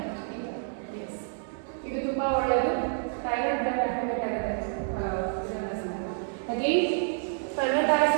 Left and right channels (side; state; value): left; silent; 59 dB below the other